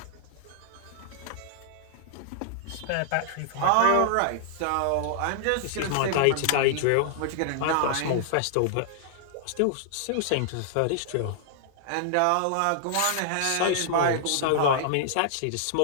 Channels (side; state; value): both; different; correlation -0.01